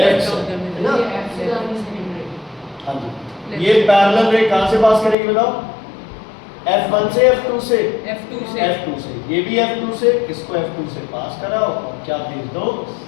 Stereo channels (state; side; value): drops out; right; at 5.2 s